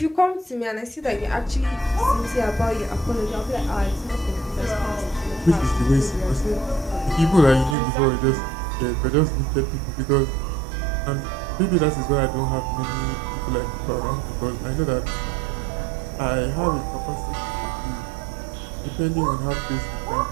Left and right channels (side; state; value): left; drops out; at 7.8 s